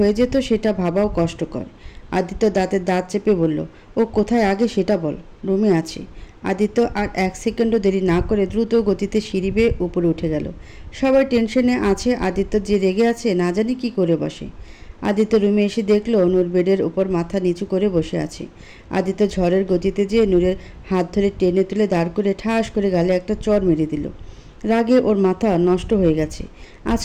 যেত সেটা ভাবাও কষ্টকর। আদিত্য দাঁতের দাঁত চেপে বলল, ও কোথায় আগে সেটা বল। রুমে আছে। আদিত্য আর 1 সেকেন্ডও দেরি না করে দ্রুত গতিতে সিঁড়ি বেয়ে উপরে উঠে গেল। সবাই টেনশনে আছে। আদিত্য যে রেগে আছে না জানি কি করে বসে। আদিত্য রুমে এসে দেখলো নূর বেডের উপর মাথা নিচু করে বসে আছে। আদিত্য ঝড়ের গতিতে যেয়ে নূরের হাত ধরে টেনে তুলে দাঁড় করে ঠাস করে গালে একটা চড় মেরে দিল। রাগে ওর মাথা নষ্ট হয়ে গেছে।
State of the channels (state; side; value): identical; both; correlation 1.00